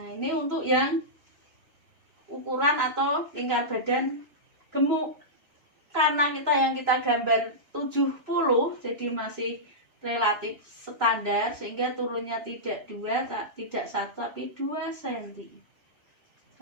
ini untuk yang ukuran atau lingkar badan gemuk. Karena yang kita gambar 70, jadi masih relatif standar, sehingga turunnya tidak 2, tidak 1, tapi 2 cm.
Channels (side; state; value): left; late; 3.0 ms